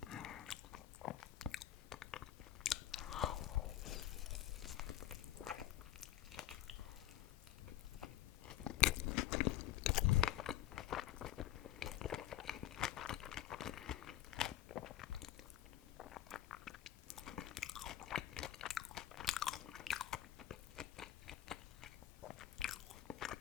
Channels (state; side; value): quieter; right; 12.9 dB